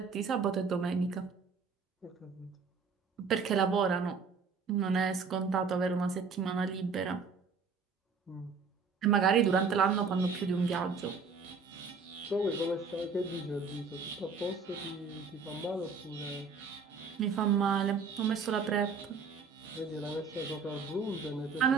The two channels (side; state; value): left; quieter; 5.1 dB